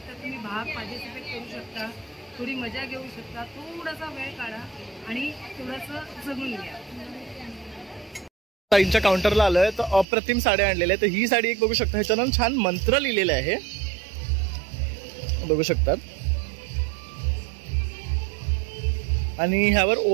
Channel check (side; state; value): left; drops out; at 10.1 s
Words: तर तुम्ही भाग पार्टिसिपेट करू शकता. थोडी मजा घेऊ शकता. थोडासा वेळ काढा आणि थोडंसं जगून घ्या. ताईंच्या काउंटरला आलोय तर अप्रतिम साड्या आणलेल्या आहेत. तर ही साडी एक बघू शकता. ह्याच्यानं छान मंत्र लिहिलेले आहे बघू शकतात. आणि ह्यावर